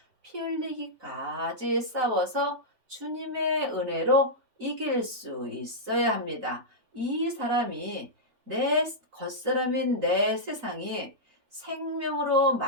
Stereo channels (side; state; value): left; late; 3.9 ms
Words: 피 흘리기까지 싸워서 주님의 은혜로 이길 수 있어야 합니다. 이 사람이 내 겉사람인 내 세상이 생명으로